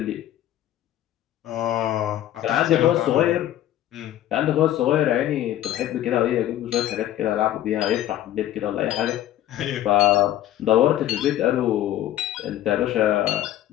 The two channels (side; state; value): right; quieter; 12.8 dB